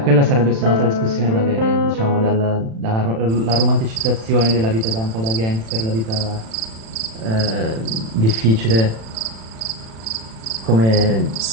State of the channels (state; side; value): late; left; 36 ms